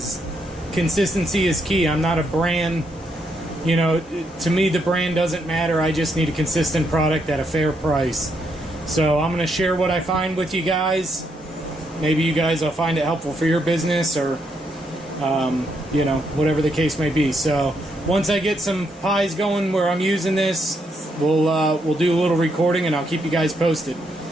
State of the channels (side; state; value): both; normal; correlation 0.77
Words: consistency is key. I'm not a brand, you know, to me the brand doesn't matter. I just need a consistent product at a fair price. So I'm gonna share what I find with you guys. Maybe you guys will find it helpful for your business, or you know, whatever the case may be. So once I get some pies going where I'm using this, we'll do a little recording and I'll keep you guys posted.